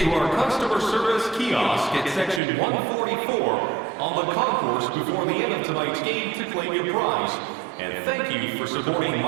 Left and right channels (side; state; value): left; drops out; at 2.4 s